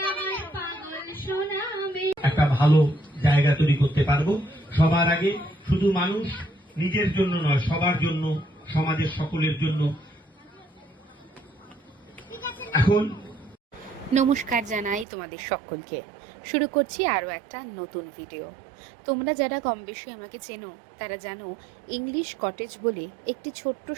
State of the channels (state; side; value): drops out; left; at 15.1 s